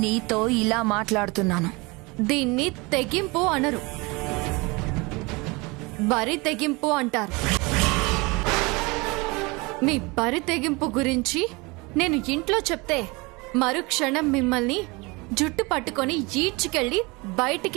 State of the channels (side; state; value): left; quieter; 25.8 dB